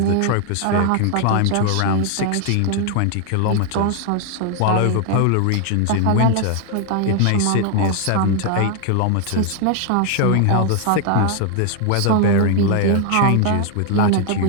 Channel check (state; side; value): different; both; correlation 0.00